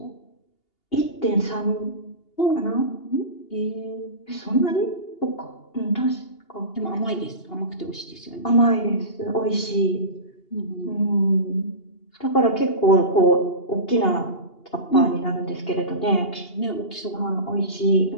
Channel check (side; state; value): right; late; 2.8 ms